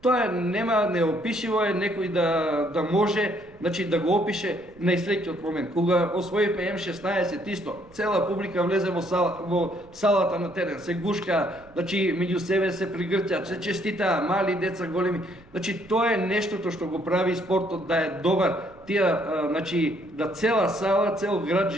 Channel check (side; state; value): right; noise; rumble, 26 dB below the sound